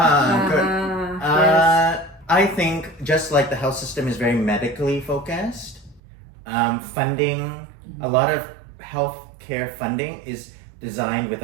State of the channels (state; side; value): drops out; left; at 6.0 s